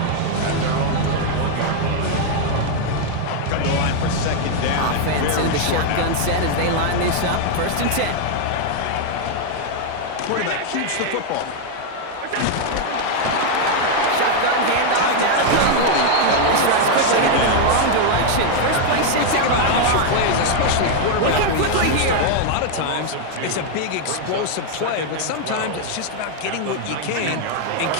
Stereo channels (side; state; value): both; different; correlation 0.00